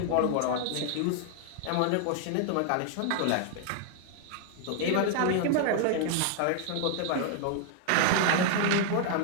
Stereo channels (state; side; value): different; both; correlation 0.00